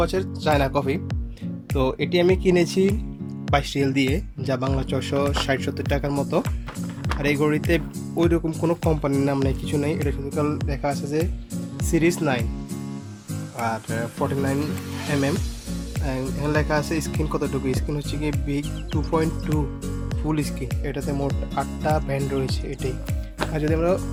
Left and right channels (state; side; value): identical; both; correlation 1.00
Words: চায়না কফি। তো এটি আমি কিনেছি 22 রিয়াল দিয়ে, যা বাংলা 460-70 টাকার মতো। আর এই ঘড়িতে ওই রকম কোনো কোম্পানির নাম নেই, কিছু নেই। এটা শুধু লেখা আছে যে সিরিজ 9 আর 49 mm। এখানে লেখা আছে স্ক্রিন কতটুকু। স্ক্রিন হচ্ছে কি বিগ 2.2 ফুল স্ক্রিন। এটাতে মোট 8টা ব্যান্ড রয়েছে এটাই। আর যদি আমরা